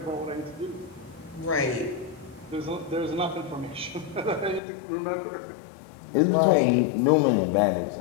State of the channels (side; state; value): right; drops out; at 4.6 s